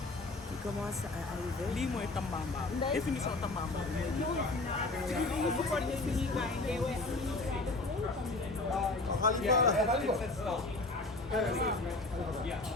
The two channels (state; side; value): quieter; right; 3.1 dB